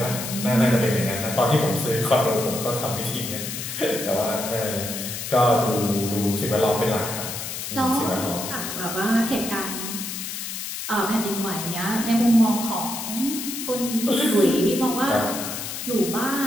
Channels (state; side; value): noise; left; hiss, 6 dB below the sound